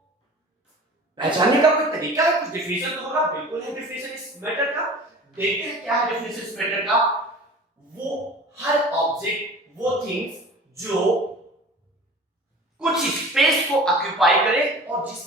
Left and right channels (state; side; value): normal; both; correlation 0.41